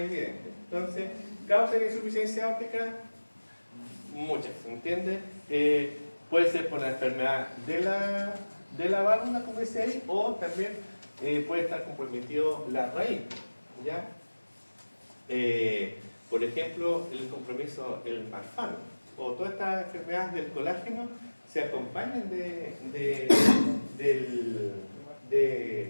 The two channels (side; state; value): both; inverted; correlation -1.00